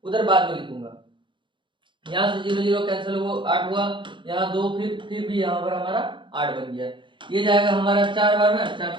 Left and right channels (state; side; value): late; left; 0.23 ms